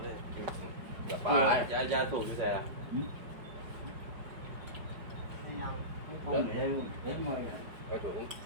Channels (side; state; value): left; late; 5.1 ms